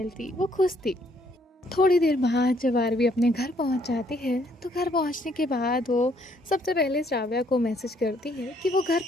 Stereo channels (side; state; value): both; normal; correlation 0.67